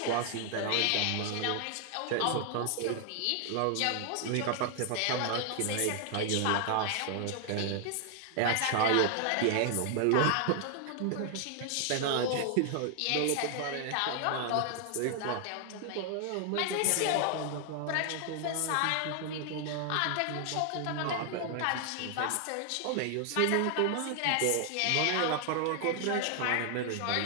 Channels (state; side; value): different; both; correlation 0.00